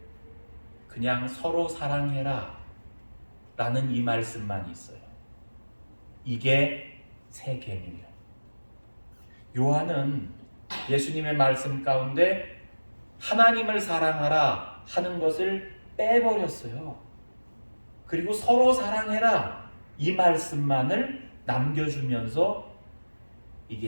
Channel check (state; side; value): inverted; both; correlation -1.00